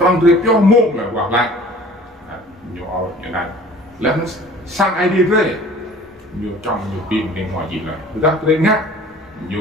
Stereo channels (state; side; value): normal; both; correlation 0.48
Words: việc cho mồm là quả lại nhiều như này là nó sang ID về nhiều trong nhiều pin bên ngoài gì là người ta lên ngắt